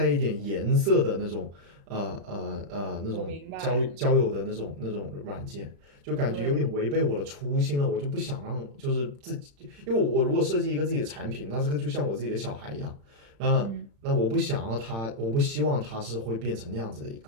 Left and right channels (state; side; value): late; left; 35 ms